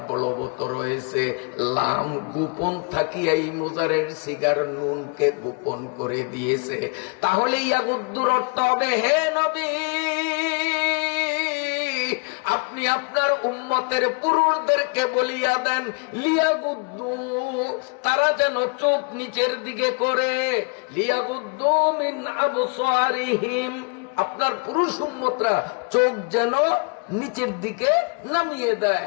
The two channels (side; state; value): right; quieter; 35.5 dB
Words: বলবৎ রয়েছে। লাম গোপন থাকিয়া এই মুজারের সিগার নুনকে গোপন করে দিয়েছে। তাহলে ইয়াগুদ্দুর অর্থ হবে, হে নবী আপনি আপনার উম্মতের পুরুষদেরকে বলিয়া দেন, লিয়াগুদ্দু, তারা যেন চোখ নিচের দিকে করে, লিয়াগুদ্দু মিন আবসারিহিম, আপনার পুরুষ উম্মতরা চোখ যেন নিচের দিকে নামিয়ে